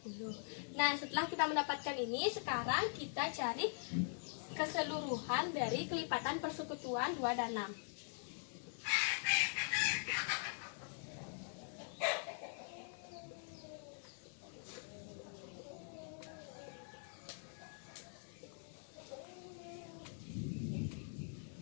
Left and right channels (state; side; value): silent; right; digital silence